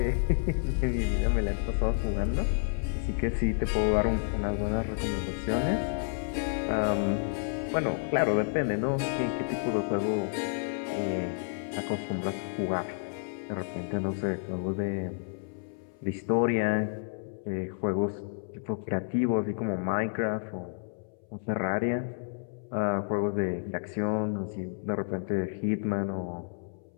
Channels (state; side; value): silent; right; 58 dB below the other